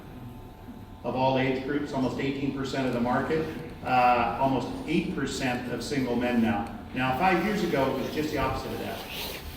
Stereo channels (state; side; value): identical; both; correlation 1.00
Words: of all age groups, almost 18% of the market, almost 8% of single men now. Now, 5 years ago, it was just the opposite of that.